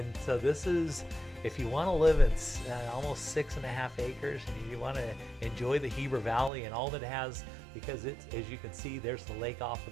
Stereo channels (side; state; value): left; drops out; at 6.5 s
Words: so this is, if you want to live in almost 6.5 acres and you want to enjoy the Heber Valley and all that it has, because it's, as you can see, there's the lake off